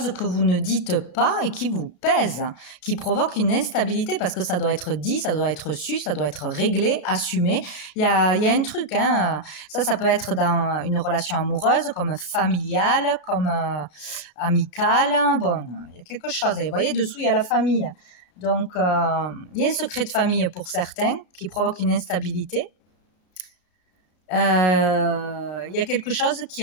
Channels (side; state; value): right; late; 33 ms